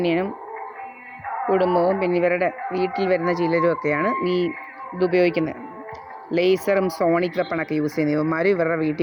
കുടുംബവും, പിന്നെ ഇവരുടെ വീട്ടിൽ വരുന്ന ചിലരുമൊക്കെയാണ് ഇതുപയോഗിക്കുന്നത്. ലേസറും സോണിക് വെപ്പണൊക്കെ യൂസ് ചെയ്യുന്ന ഇവന്മാരും ഇവരുടെ വീട്ടിൽ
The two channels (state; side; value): identical; both; correlation 1.00